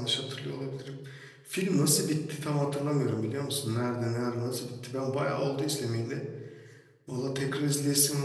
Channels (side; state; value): both; identical; correlation 1.00